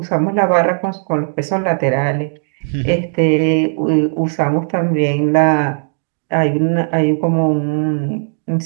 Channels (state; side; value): silent; left; digital silence